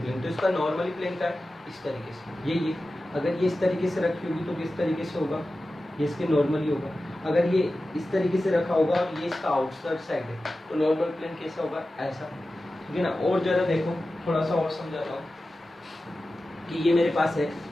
तो इसका नॉर्मली प्लेन का है इस तरीके से, ये अगर ये इस तरीके से रखी होगी तो किस तरीके से होगा, ये इसके नॉर्मली होगा. अगर ये इस तरीके से रखा होगा और ये इसका आउटसाइड साइड है तो नॉर्मल प्लेन कैसा होगा? ऐसा, ठीक है ना. और ज़रा देखो, थोड़ा सा और समझाता हूँ कि ये मेरे पास है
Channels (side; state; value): both; normal; correlation 0.94